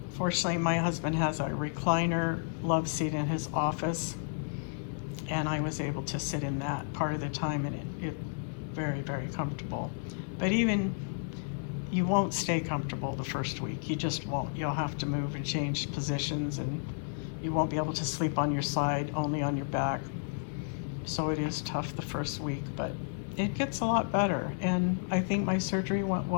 Fortunately, my husband has a recliner love seat in his office, and I was able to sit in that part of the time, and it very, very comfortable. But even you won't stay comfortable the first week. You just won't. You'll have to move and change positions, and you won't be able to sleep on your side, only on your back. So it is tough the first week, but it gets a lot better. And I think my surgery went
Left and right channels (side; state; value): right; silent; digital silence